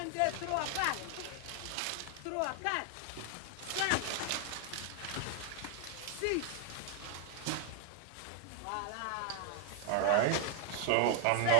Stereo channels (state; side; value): different; both; correlation 0.00